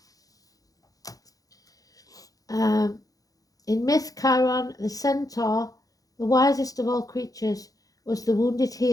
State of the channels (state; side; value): late; right; 0.17 ms